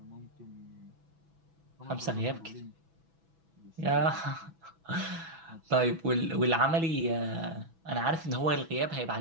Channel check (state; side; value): late; left; 6.1 ms